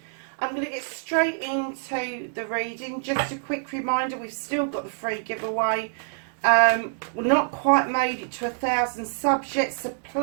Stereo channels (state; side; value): silent; left; digital silence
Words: I'm going to get straight into the reading. Just a quick reminder, we've still got the free giveaway. We're not quite made it to 1,000 subs yet, so